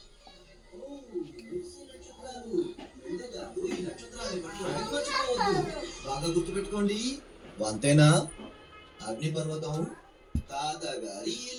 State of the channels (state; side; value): identical; both; correlation 1.00